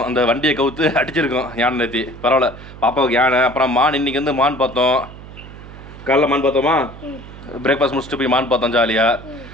அந்த வண்டியை கவுத்து அடிச்சிருக்கோம் யானை நேற்று. பரவாயில்ல பாப்பாவுக்கு யானை. அப்புறம் மான். இன்னைக்கு வந்து மான் பார்த்தோம். காலைல மான் பார்த்தோமா? பிரேக்ஃபாஸ்ட் முடிச்சுட்டு போய் மான் பார்த்தோம் ஜாலியாக.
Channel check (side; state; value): right; noise; hum, 16 dB below the sound